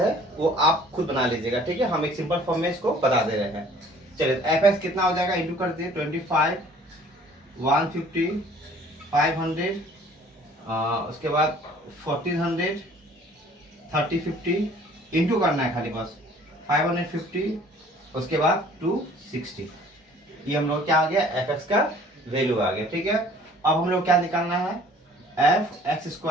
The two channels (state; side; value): normal; both; correlation 0.53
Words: वो आप खुद बना लीजिएगा, ठीक है। हम एक सिंपल फॉर्म में इसको बता दे रहे हैं। चलिए एफ एक्स कितना हो जाएगा, इंटू कर दिए 25, 150, 500, उसके बाद 1400, 30, 50 इंटू करना है खाली बस 550, उसके बाद 260। ये हम लोग क्या आ गया, एफ एक्स का वैल्यू आ गया, ठीक है। अब हम लोग क्या निकालना है, एफ एक्स